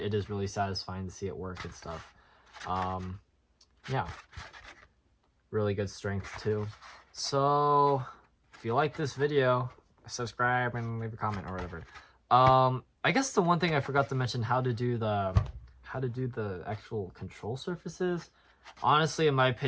it is really satisfying to see it work and stuff. Yeah, really good strength too. So if you like this video, subscribe and leave a comment or whatever. I guess the one thing I forgot to mention, how to do the actual control surfaces. Honestly, in my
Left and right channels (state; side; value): identical; both; correlation 1.00